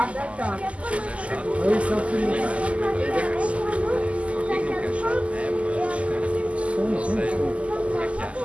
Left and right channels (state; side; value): late; left; 0.062 ms